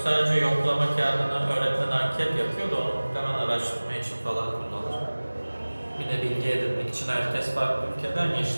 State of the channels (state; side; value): inverted; both; correlation -1.00